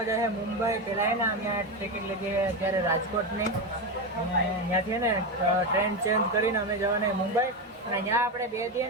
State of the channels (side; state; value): both; normal; correlation 0.14